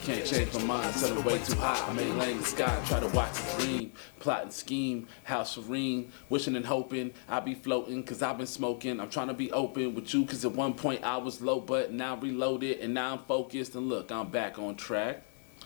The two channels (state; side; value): silent; right; 55 dB below the other